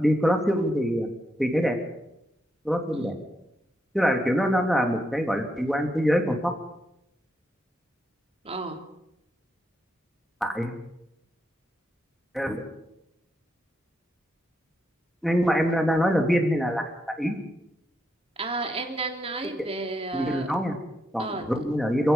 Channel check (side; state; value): both; normal; correlation 0.81